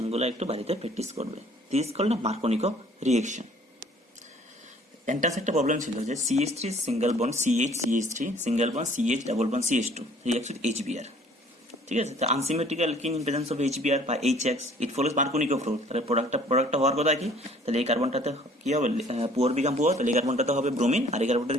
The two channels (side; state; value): both; normal; correlation 0.55